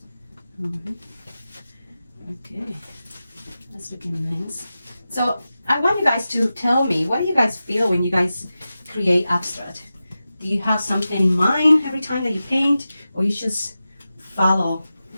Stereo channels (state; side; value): inverted; both; correlation -0.93